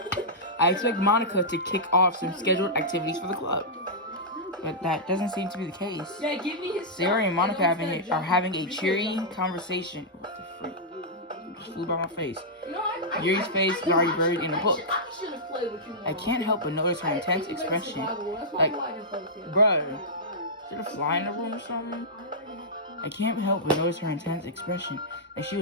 off some scheduled activities for the club. But that doesn't seem to be the case. Yeah, give me his Sayori and Monica are having a cheery conversation. What the freak? Just flew by my face. Yuri's face is already buried in a book. I can't help but notice her intense expression. Like, bruh, did a fly in the room or something? I can't help but notice her intense expression, like she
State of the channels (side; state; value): both; normal; correlation -0.12